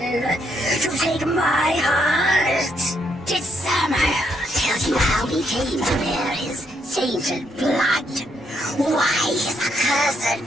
To take my heart? Did Samael tell you how he came to bear his tainted blood? Why his accursed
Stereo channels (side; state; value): both; normal; correlation 0.75